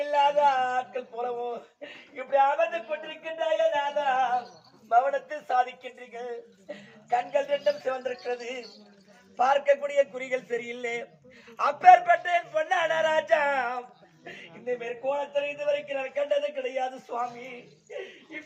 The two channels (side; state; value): both; identical; correlation 1.00